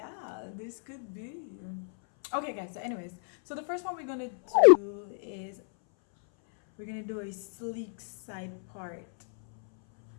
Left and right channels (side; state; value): right; silent; 57 dB below the other